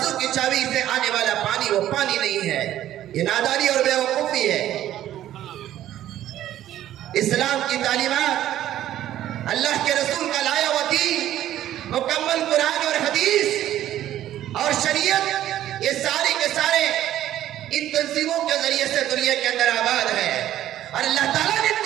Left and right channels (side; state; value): left; quieter; 12.6 dB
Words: کی چابی سے آنے والا پانی وہ پانی نہیں ہے، یہ نادانی اور بیوقوفی ہے. اسلام کی تعلیمات، اللہ کے رسول کا لایا ہوا دین، مکمل قرآن اور حدیث اور شریعت، یہ سارے کے سارے ان تنظیموں کے ذریعے سے دنیا کے اندر آباد ہے اور اللہ تعالیٰ نے ان